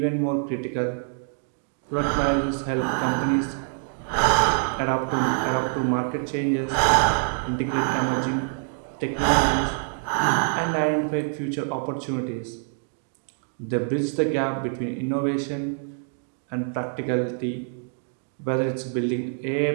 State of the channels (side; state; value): left; silent; 61 dB below the other